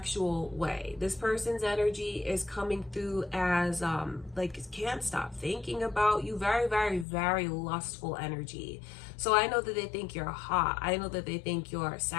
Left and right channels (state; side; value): drops out; right; at 7.1 s